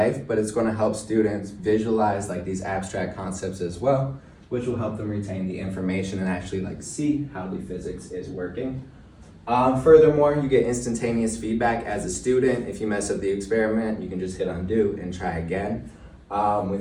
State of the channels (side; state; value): both; identical; correlation 1.00